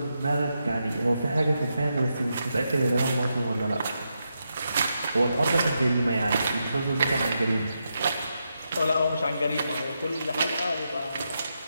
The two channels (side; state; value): both; inverted; correlation -0.85